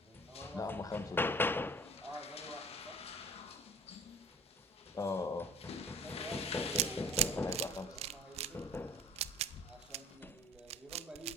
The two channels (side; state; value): both; normal; correlation 0.46